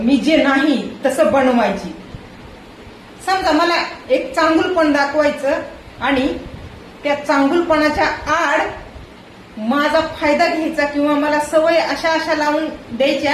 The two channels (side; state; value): both; identical; correlation 1.00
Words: मी जे नाही तसं बनवायची. समजा मला एक चांगुलपण दाखवायचं आणि त्या चांगुलपणाच्या आड माझा फायदा घ्यायचा, किंवा मला सवय अशा अशा लावून